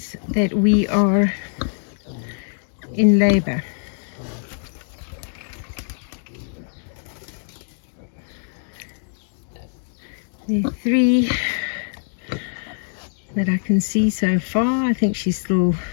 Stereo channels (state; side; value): silent; right; digital silence